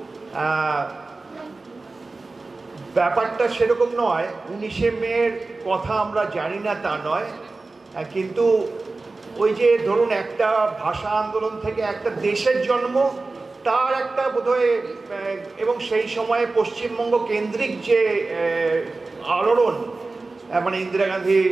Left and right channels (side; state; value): left; quieter; 3.5 dB